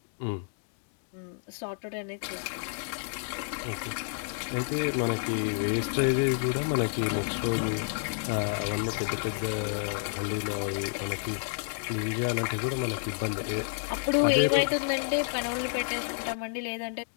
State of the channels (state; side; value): silent; right; digital silence